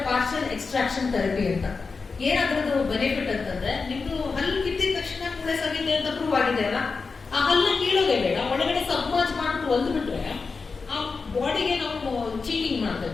ಪಾರ್ಷಿಯಲ್ ಎಕ್ಸ್ಟ್ರಾಕ್ಷನ್ ಥೆರಪಿ ಅಂತ. ಏನಾದ್ರದ್ದು ಬೆನಿಫಿಟ್ ಅಂತಂದ್ರೆ, ನಿಮ್ದು ಹಲ್ಲು ಕಿತ್ತಿದ ತಕ್ಷಣ ಮೂಳೆ ಸವಿದೆ ಅಂತ ಪ್ರೂವ್ ಆಗಿದೆ ಅಲ್ಲ, ಆ ಹಲ್ಲ ಕೀಳೋದೇ ಬೇಡ, ಒಳಗಡೆ ಸಬ್ಮರ್ಜ್ ಮಾಡ್ಬಿಟ್ಟು ಒಲ್ದ್ಬಿಟ್ರೆ ಆ ಬಾಡಿಗೆ ನಾವು ಚೀಟಿಂಗ್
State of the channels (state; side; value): quieter; right; 4.6 dB